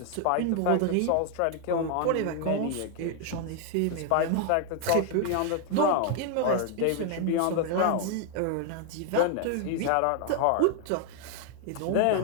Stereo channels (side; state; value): both; different; correlation 0.01